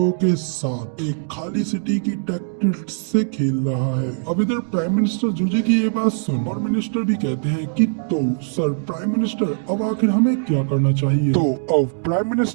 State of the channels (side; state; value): left; silent; digital silence